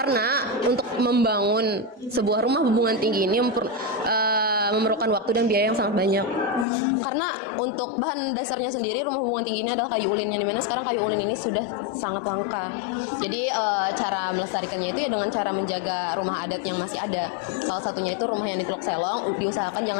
untuk membangun sebuah rumah Bubungan Tinggi ini memerlukan waktu dan biaya yang sangat banyak. Karena untuk bahan dasarnya sendiri rumah Bubungan Tinggi ini adalah kayu ulin, yang dimana sekarang kayu ulin ini sudah sangat langka. Jadi cara melestarikannya itu ya dengan cara menjaga rumah adat yang masih ada. Salah satunya itu rumah yang di Teluk Selong, diusahakan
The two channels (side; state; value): right; drops out; at 6.7 s